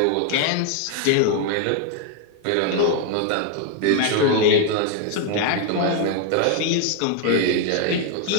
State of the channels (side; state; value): both; different; correlation 0.01